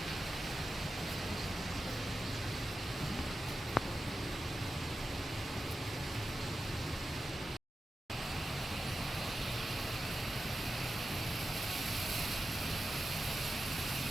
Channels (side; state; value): both; normal; correlation 0.91